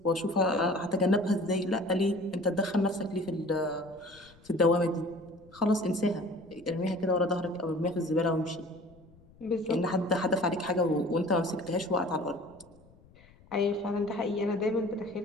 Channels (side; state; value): left; noise; rumble, 27 dB below the sound